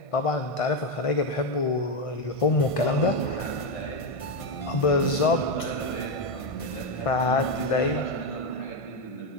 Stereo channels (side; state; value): right; late; 1.5 ms